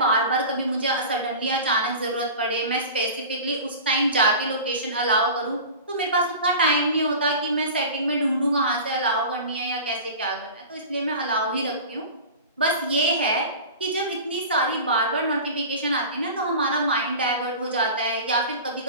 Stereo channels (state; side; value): inverted; both; correlation -0.35